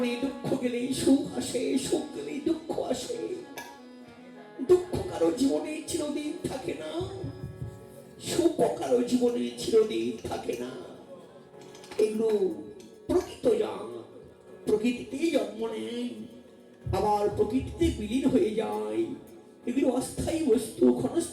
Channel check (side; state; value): both; identical; correlation 1.00